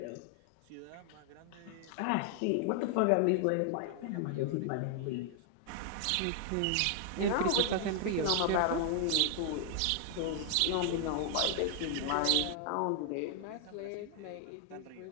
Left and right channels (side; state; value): both; different; correlation 0.00